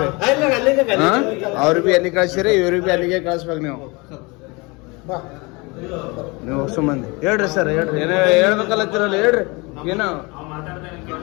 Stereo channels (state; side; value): quieter; right; 26.6 dB